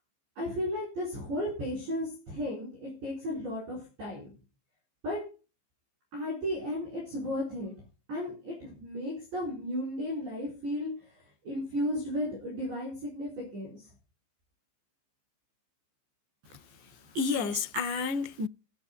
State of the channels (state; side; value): late; left; 15 ms